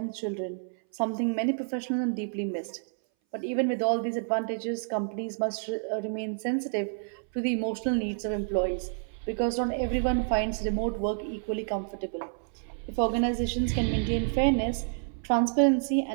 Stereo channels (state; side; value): silent; left; 58 dB below the other